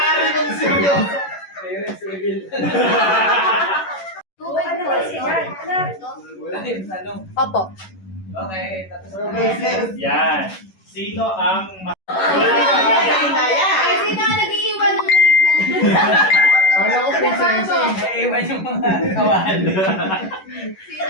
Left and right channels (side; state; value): right; late; 11 ms